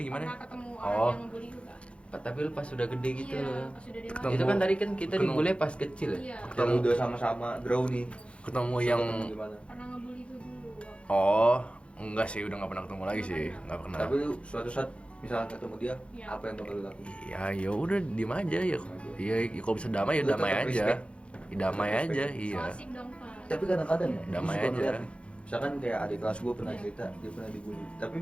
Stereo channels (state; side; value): late; right; 0.060 ms